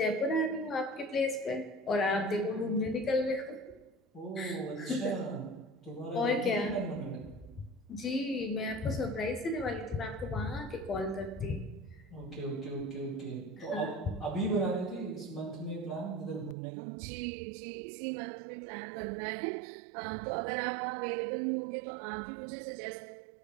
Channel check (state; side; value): drops out; left; at 16.6 s